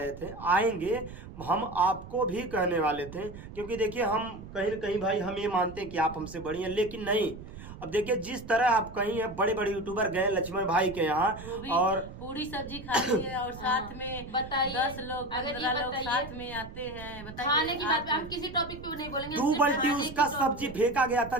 थे, आएंगे, हम आपको भी कहने वाले थे, क्योंकि देखिए हम कहीं न कहीं भाई हम ये मानते हैं कि आप हमसे बड़ी हैं, लेकिन नहीं। अब देखिए जिस तरह आप कहीं है, बड़े बड़े यूट्यूबर गए लक्ष्मण भाई के यहाँ और पूरी सब्जी खाती है और साथ में बताइए 10 लोग 15 लोग साथ में आते हैं। बताइए खाने की बात हम किसी टॉपिक पे नहीं बोलेंगे। दो बल्टी उसका सब्जी फेंका गया था,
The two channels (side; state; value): right; noise; rumble, 14 dB below the sound